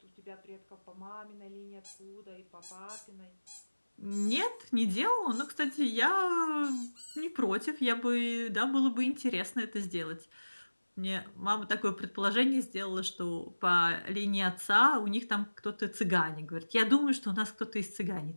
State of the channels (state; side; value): inverted; both; correlation -1.00